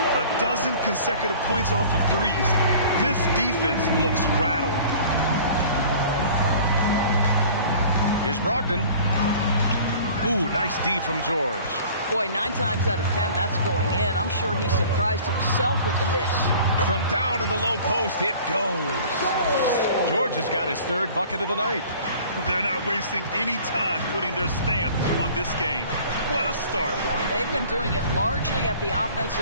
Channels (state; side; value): inverted; both; correlation -0.47